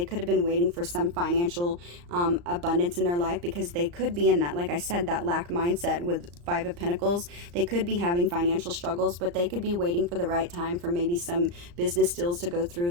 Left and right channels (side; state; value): left; late; 34 ms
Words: could have been waiting for some financial abundance in their life, because they could be in that, like I said, that lack mindset with Five of Pentacles. They could be having financial struggles, but they could be waiting for the right time for maybe some business deals to go